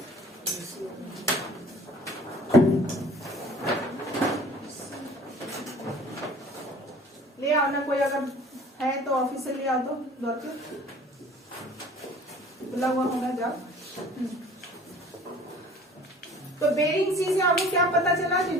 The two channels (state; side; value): normal; both; correlation 0.49